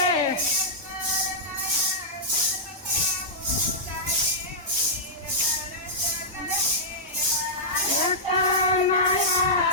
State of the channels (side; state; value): both; normal; correlation -0.11